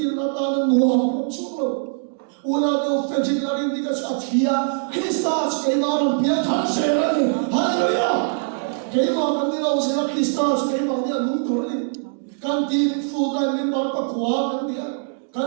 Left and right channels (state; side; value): silent; left; digital silence